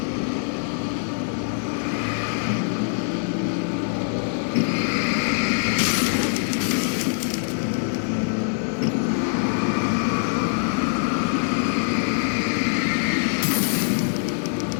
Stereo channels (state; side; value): silent; right; digital silence